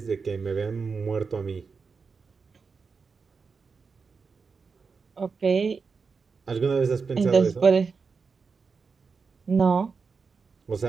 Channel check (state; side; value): quieter; left; 5.1 dB